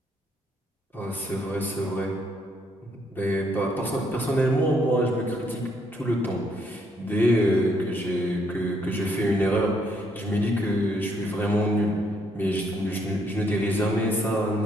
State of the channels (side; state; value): both; normal; correlation 0.71